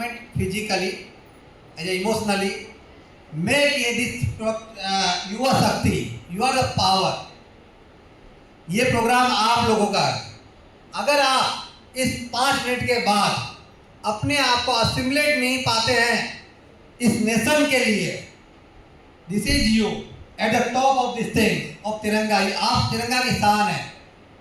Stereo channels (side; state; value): both; identical; correlation 1.00